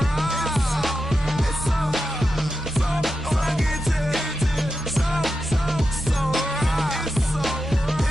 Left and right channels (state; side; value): normal; both; correlation 0.90